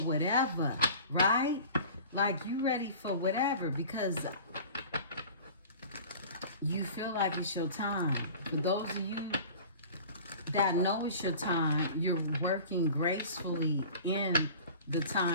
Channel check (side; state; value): both; inverted; correlation -0.41